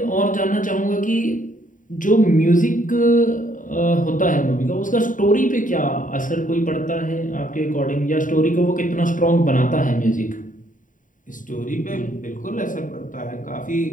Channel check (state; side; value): late; right; 0.38 ms